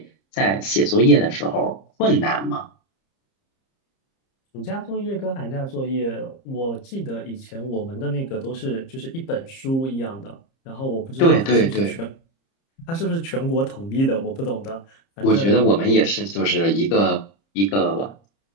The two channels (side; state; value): right; late; 30 ms